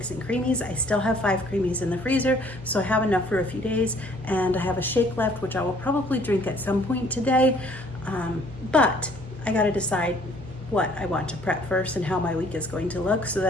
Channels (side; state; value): both; normal; correlation 0.59